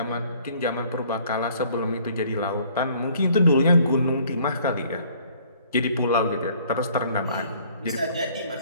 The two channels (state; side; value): inverted; both; correlation -0.58